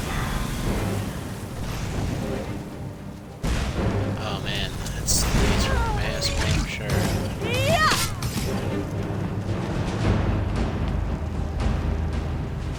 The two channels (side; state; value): both; identical; correlation 1.00